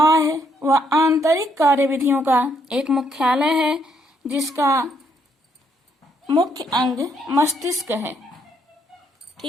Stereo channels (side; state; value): both; normal; correlation 0.72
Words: व आंतरिक कार्यविधियों का एक मुख्यालय है, जिसका मुख्य अंग मस्तिष्क है।